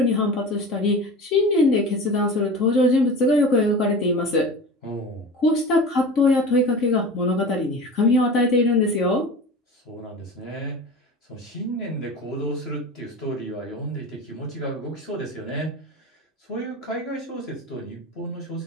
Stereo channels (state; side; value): normal; both; correlation 0.33